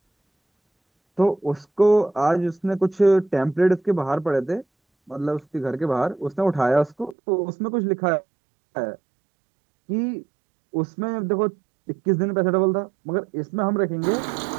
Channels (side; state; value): left; drops out; at 7.2 s